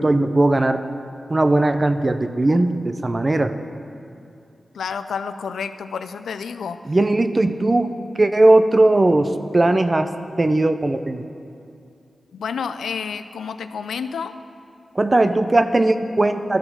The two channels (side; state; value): both; normal; correlation 0.97